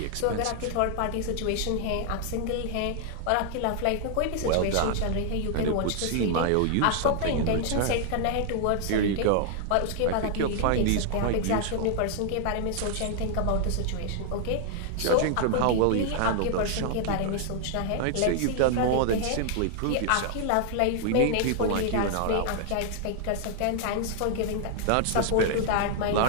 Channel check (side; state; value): both; different; correlation 0.00